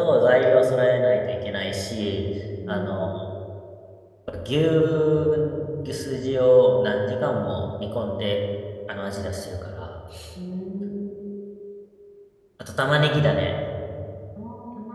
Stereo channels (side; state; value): both; identical; correlation 1.00